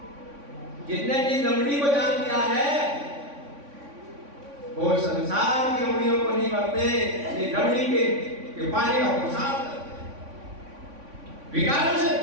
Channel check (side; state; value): left; late; 3.5 ms